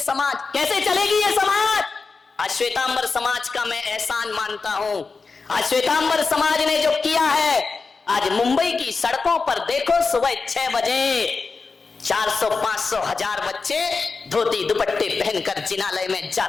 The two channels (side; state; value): right; quieter; 4.5 dB